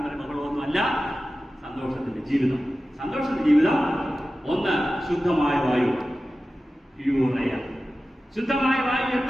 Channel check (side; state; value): both; normal; correlation 0.95